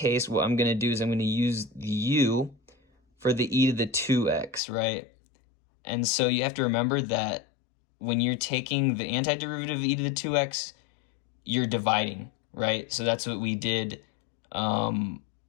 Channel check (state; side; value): drops out; right; at 4.6 s